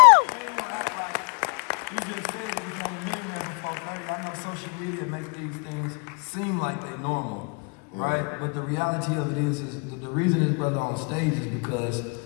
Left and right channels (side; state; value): right; quieter; 37.0 dB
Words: Social media makes these things seem like they normal, right? But the reality of it is the reason this brother on stage is because